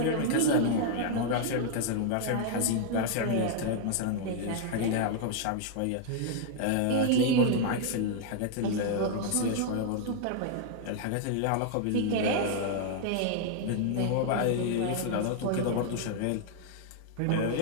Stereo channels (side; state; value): both; different; correlation 0.00